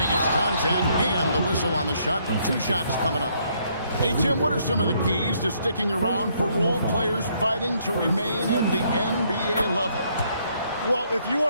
he gets contact and the whistle on the shot. 2 shots coming up. Hey, Tim, what are some of the keys to sticking around for role players fighting to remain at the NBA level? Well, if you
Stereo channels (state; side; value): inverted; both; correlation -0.70